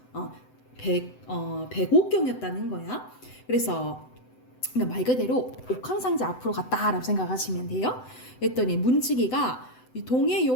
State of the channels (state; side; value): late; right; 7.9 ms